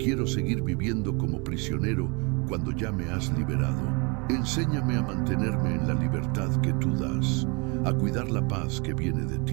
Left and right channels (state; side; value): quieter; left; 30.9 dB